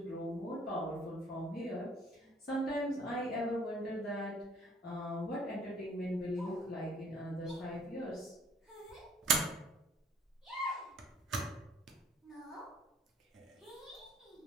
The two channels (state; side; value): normal; both; correlation 0.58